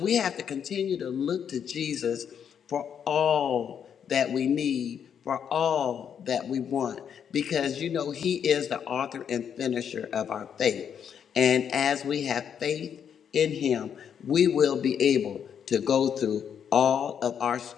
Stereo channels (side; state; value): right; quieter; 8.1 dB